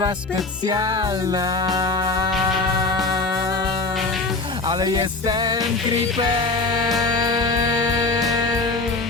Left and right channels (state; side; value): quieter; right; 3.5 dB